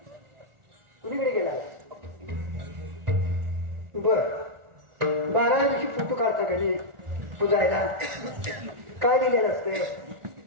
कुणीकडे गेला बर 12 दिवशी फोटो काढता का नाही पुजायला काय लिहिलेलं असते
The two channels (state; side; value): late; left; 1.4 ms